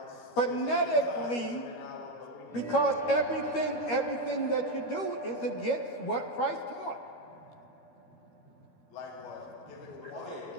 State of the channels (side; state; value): right; late; 13 ms